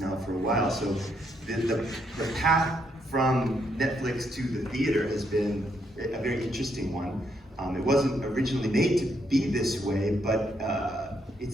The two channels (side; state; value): both; normal; correlation 0.75